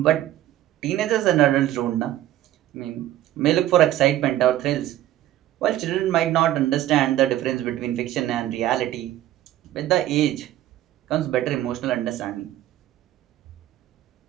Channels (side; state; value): left; quieter; 13.6 dB